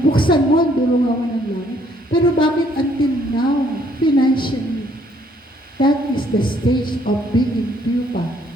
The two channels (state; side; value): normal; both; correlation 0.65